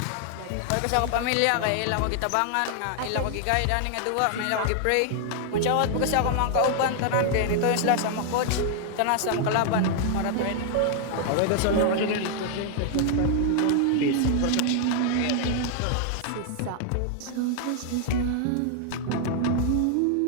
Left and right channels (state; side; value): different; both; correlation 0.00